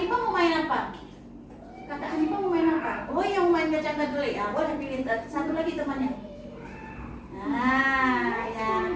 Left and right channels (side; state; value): both; identical; correlation 1.00